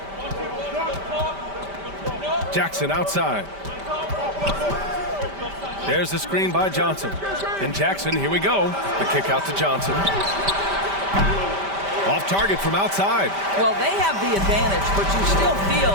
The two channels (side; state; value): left; late; 5.1 ms